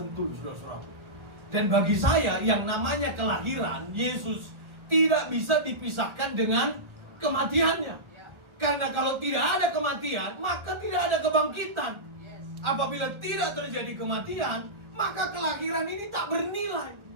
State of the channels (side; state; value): left; late; 1.4 ms